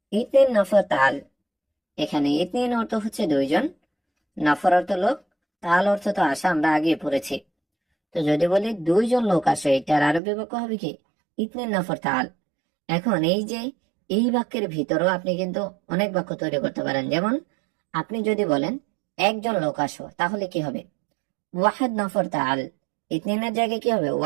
ইতনিন নফর তাল। এখানে ইতনিন অর্থ হচ্ছে দুইজন, নফর অর্থ লোক, তাল অর্থ তো আসা আমরা আগে পড়েছি। তো যদি বলি দুইজন লোক আসো, এটার আরবি বাক্য হবে কি? ইতনিন নফর তাল। এখন এই যে এই বাক্যের ভিতরেও আপনি কিন্তু অনেক বাক্য তৈরি করতে পারেন। যেমন আপনি যদি বলেন একজন লোক আসো, তাহলে কি হবে? ওয়াহেদ নফর তাল। ইতনিনের জায়গায় কি হবে?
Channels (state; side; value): drops out; left; at 10.2 s